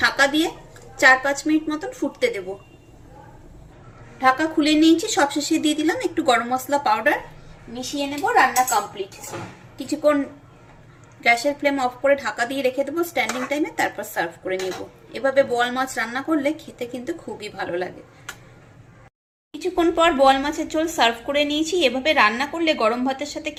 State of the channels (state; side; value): identical; both; correlation 1.00